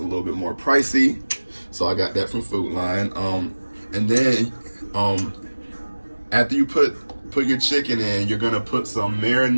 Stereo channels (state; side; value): inverted; both; correlation -1.00